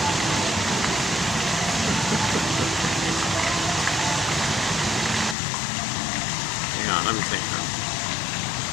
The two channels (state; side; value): drops out; right; at 5.4 s